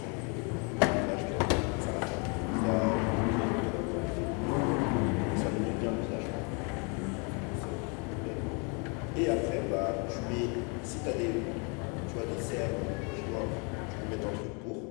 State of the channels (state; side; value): quieter; right; 34.5 dB